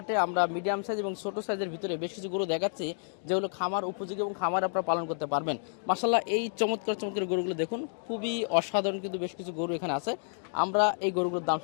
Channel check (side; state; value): right; silent; 58 dB below the other